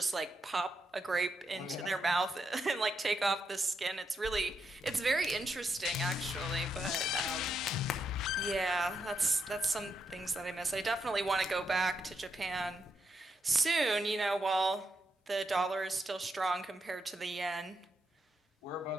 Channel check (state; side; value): normal; both; correlation 0.81